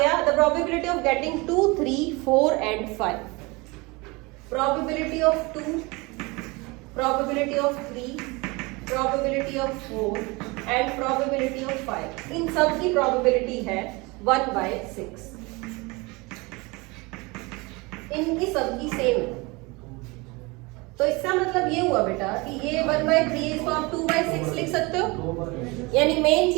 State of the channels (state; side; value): quieter; left; 25.5 dB